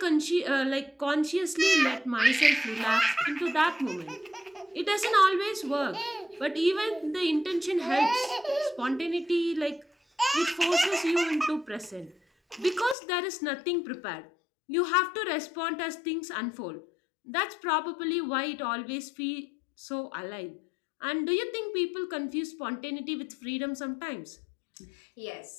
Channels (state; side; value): drops out; right; at 13.0 s